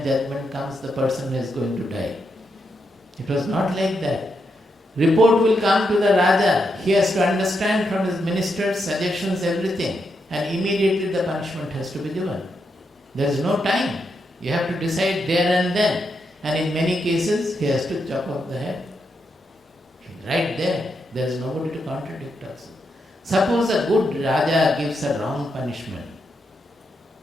judgment comes, the person is going to die. It was not like that. Report will come to the Raja. He has to understand from his ministers, suggestions, everything. And immediately the punishment has to be given. There is no time. You have to decide there and then. And in many cases, he has to chop off the head. Right there. There is nobody to contradict us. Suppose a good Raja gives a wrong punishment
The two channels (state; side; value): normal; both; correlation 0.82